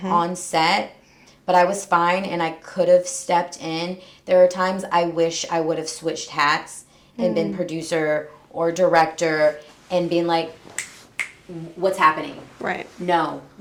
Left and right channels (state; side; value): identical; both; correlation 1.00